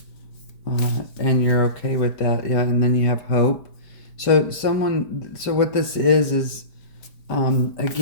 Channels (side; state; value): right; late; 5.1 ms